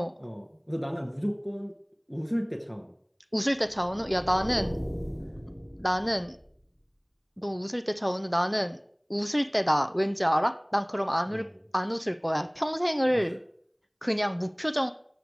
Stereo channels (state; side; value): identical; both; correlation 1.00